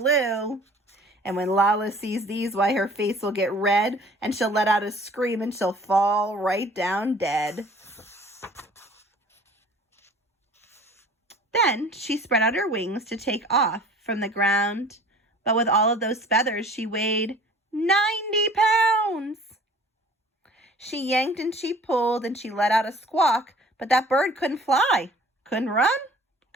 And when Lala sees these, why, her face will get red, and she'll let out a scream, and she'll fall right down dead." Then she spread out her wings to take off from the ground, but with all of those feathers she weighed 90 pounds. She yanked and she pulled and she let out a squawk, but that bird couldn't fly, couldn't run,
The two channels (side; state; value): both; normal; correlation 0.49